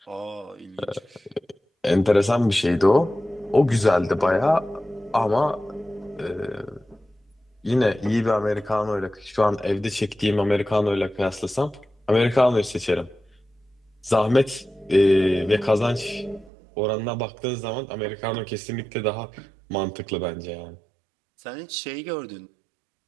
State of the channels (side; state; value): left; drops out; at 16.5 s